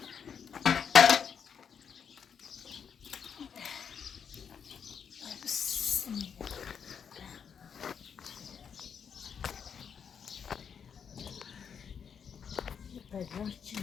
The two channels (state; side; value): quieter; right; 7.2 dB